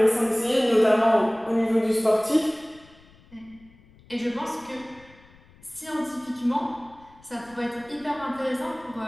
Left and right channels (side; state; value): left; noise; rumble, 26 dB below the sound